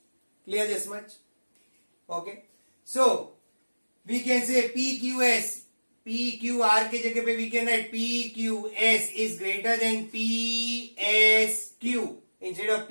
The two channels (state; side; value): inverted; both; correlation -1.00